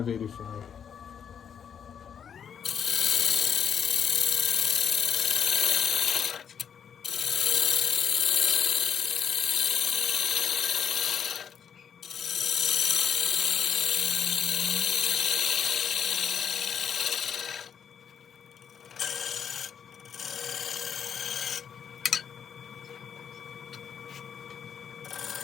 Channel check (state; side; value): quieter; right; 7.8 dB